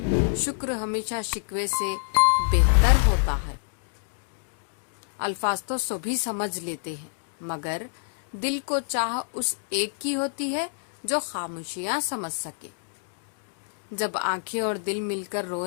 شکر ہمیشہ شکوے سے بہتر ہوتا ہے۔ الفاظ تو سبھی سمجھ لیتے ہیں، مگر دل کو چاہ اس ایک کی ہوتی ہے جو خاموشیاں سمجھ سکے۔ جب آنکھیں اور دل مل کر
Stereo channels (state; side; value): silent; right; digital silence